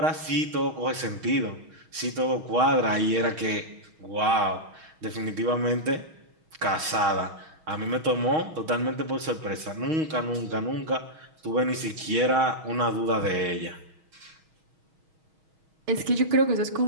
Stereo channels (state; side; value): late; left; 6.3 ms